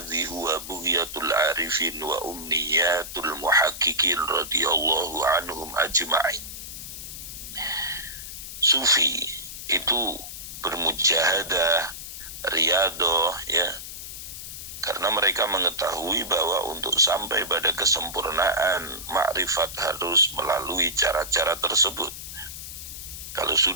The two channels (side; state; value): left; noise; hiss, 10 dB below the sound